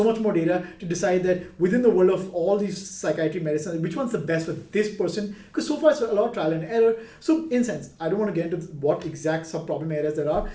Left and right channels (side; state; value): both; identical; correlation 1.00